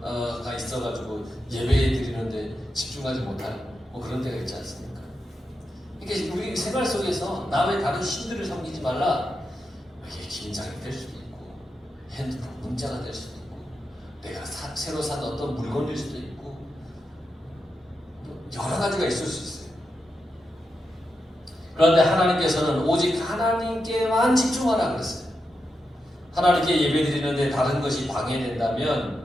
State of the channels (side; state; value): both; normal; correlation 0.87